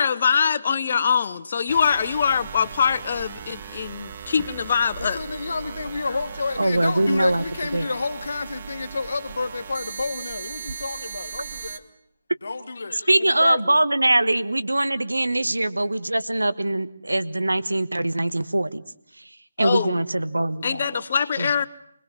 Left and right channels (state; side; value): inverted; both; correlation -0.89